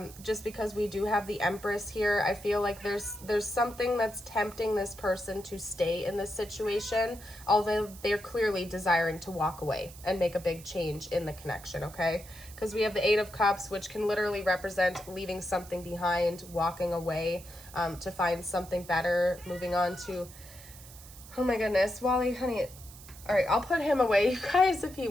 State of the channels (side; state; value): right; noise; hiss, 18 dB below the sound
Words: Just because we do have the Empress here, I feel like there's something that's tempting this person to stay in this situation, although they're clearly desiring to walk away and make a big change in the connection, okay? Because we have the 8 of Cups, which can literally represent leaving something behind, walking away to find something better, moving on to, oh my goodness, Wally, honey. All right, I'll put him away, you guys, if he